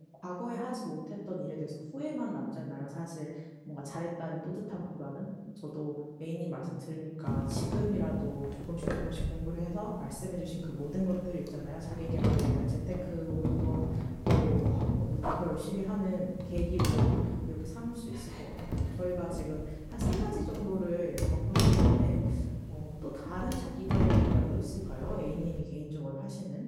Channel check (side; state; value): both; identical; correlation 1.00